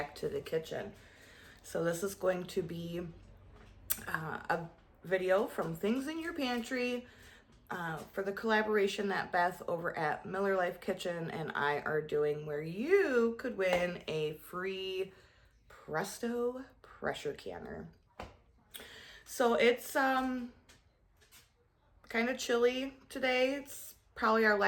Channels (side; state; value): both; identical; correlation 1.00